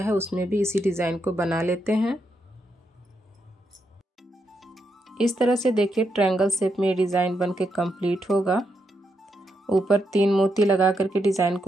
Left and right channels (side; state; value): both; normal; correlation 0.81